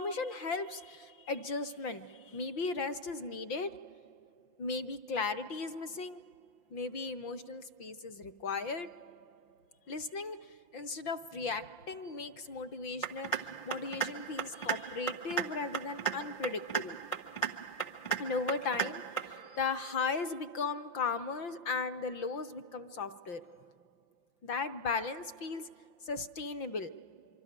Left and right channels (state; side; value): late; right; 5.8 ms